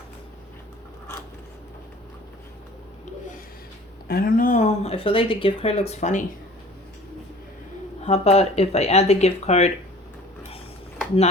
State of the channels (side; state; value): both; normal; correlation 0.47